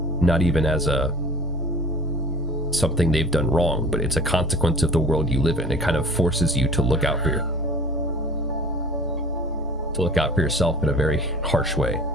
not even as a something they've done wrong, but it's a consequence of the world you live in. It kind of forces you to look out for yourself in a very harsh way.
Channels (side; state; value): both; normal; correlation 0.45